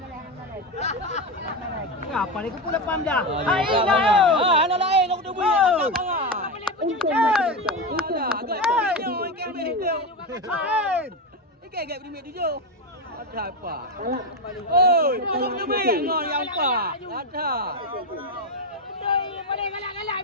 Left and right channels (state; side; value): normal; both; correlation 0.14